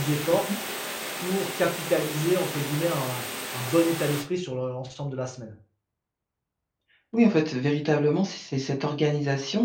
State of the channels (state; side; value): identical; both; correlation 1.00